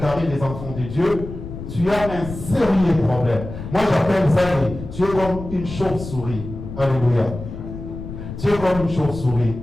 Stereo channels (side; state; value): left; noise; rumble, 10 dB below the sound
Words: des enfants de Dieu, tu as un sérieux problème. Moi, j'appelle ça, tu es comme une chauve-souris. Alléluia. Tu es comme une chauve-souris.